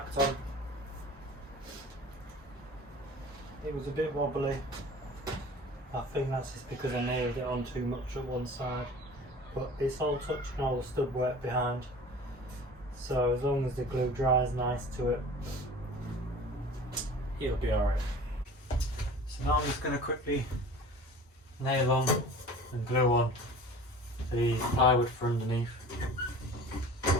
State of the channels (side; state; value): both; normal; correlation 0.42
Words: on. It was a bit wobbly. I think that's just because I nailed it on too much at one side. But it's all touching all the stud work behind. So as long as the glue dries nice to it, it'll be alright. So now I'm just going to quickly nail on and glue on the plywood for underneath.